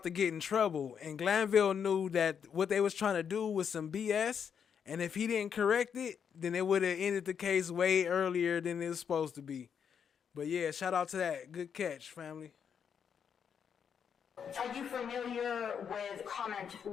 to get in trouble. And Glanville knew that what they was trying to do was some BS. And if he didn't correct it, then it would have ended the case way earlier than it was supposed to be. But yeah, shout out to that. Good catch, family. Are you familiar with the comment in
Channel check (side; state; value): right; quieter; 7.4 dB